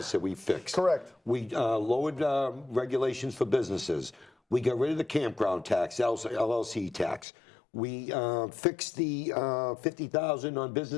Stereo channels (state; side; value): drops out; right; at 7.2 s